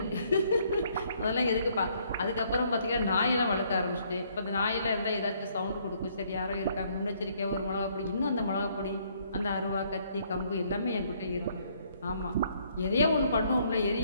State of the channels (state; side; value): inverted; both; correlation -0.67